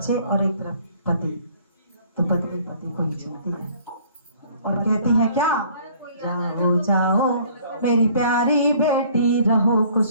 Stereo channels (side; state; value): both; inverted; correlation -0.56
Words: और एक तरफ पति, तो पत्नी पति को ही चलती है और कहती है क्या, जाओ जाओ मेरी प्यारी बेटी, रहो